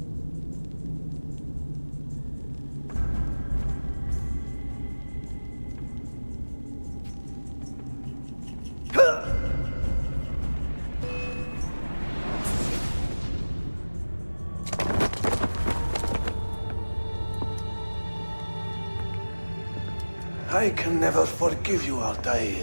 I can never forgive you,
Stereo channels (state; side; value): inverted; both; correlation -1.00